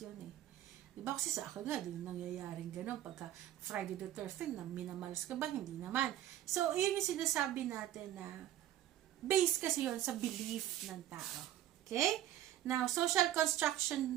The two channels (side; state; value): left; quieter; 12.6 dB